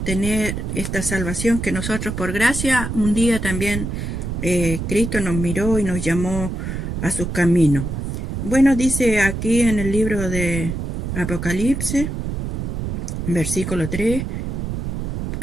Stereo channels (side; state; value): right; noise; rumble, 3 dB below the sound